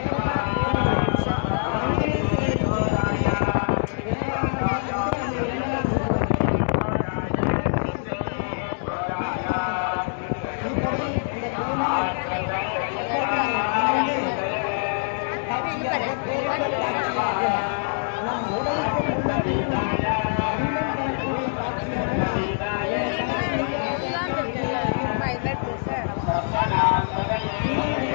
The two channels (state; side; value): silent; right; digital silence